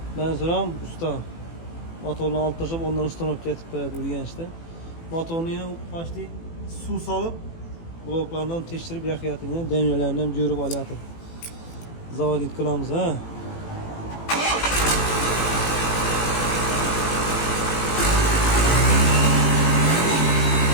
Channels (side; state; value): right; late; 18 ms